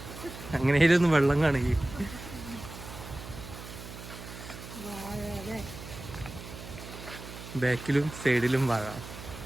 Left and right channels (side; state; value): right; noise; hum, 12 dB below the sound